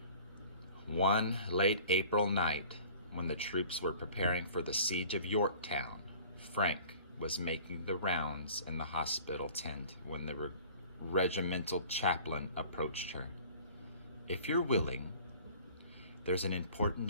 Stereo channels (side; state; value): both; inverted; correlation -0.47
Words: One late April night, when the troops were preparing for the siege of Yorktown, Frank was making the rounds in the hospital tent when the regimental chaplain approached her. "If you're willing, there's an important